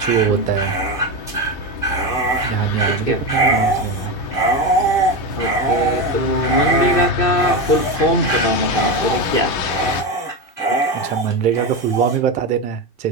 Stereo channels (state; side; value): late; right; 2.2 ms